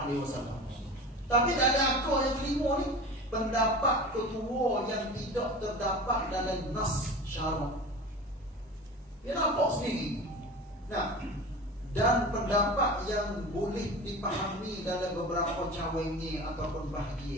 Tapi tak ada aku yang kelima ni, pendapat ketua yang tidak terdapat dalam nas syarak. Dia nampak sendiri. Dan pendapat yang boleh dipahami dalam beberapa cawangi ataupun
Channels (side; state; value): both; normal; correlation 0.34